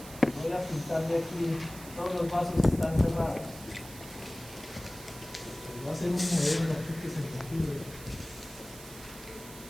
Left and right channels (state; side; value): noise; right; hiss, 15 dB below the sound